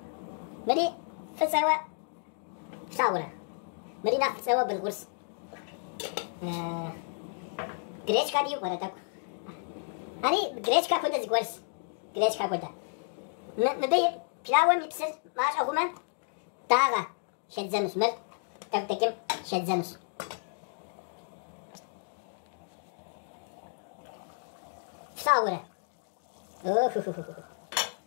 مري فسوا ساورة مري ناخد سوا بالغرس جريش كادي يقرأ تاك أني جريش كابودا زغرس جريش كابودا مبي بلاوة ميبسر ماش أغوما تاغا شدزنوس مر تكتكم شدزنوس ساورة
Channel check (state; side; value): silent; right; digital silence